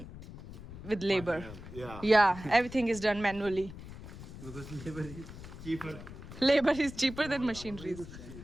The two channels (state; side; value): noise; left; rumble, 13 dB below the sound